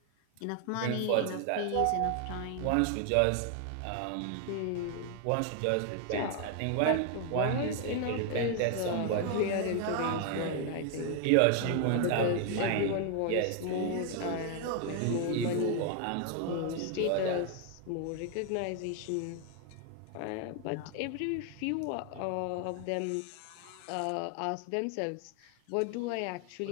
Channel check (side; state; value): both; different; correlation 0.00